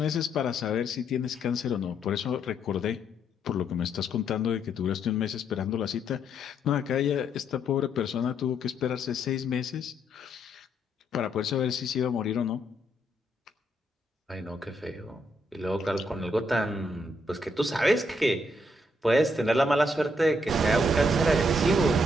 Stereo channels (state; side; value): normal; both; correlation 0.74